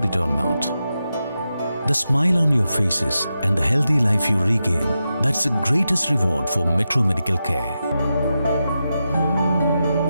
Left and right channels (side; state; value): both; inverted; correlation -0.89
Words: it or not. The smile on your faces and the healthy life you regain, that's the greatest reward for Metro Medical Care.